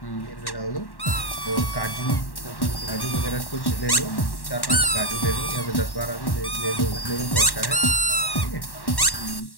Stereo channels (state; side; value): late; right; 1.1 ms